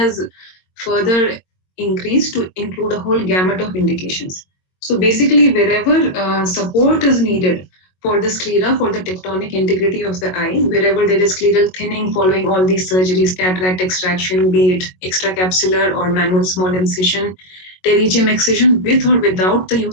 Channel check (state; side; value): late; right; 22 ms